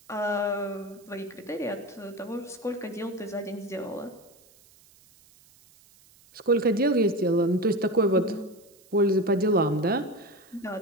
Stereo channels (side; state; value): right; noise; hiss, 28 dB below the sound